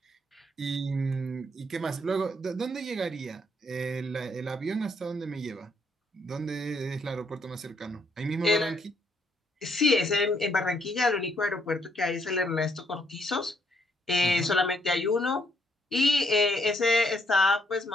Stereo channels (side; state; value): both; normal; correlation 0.72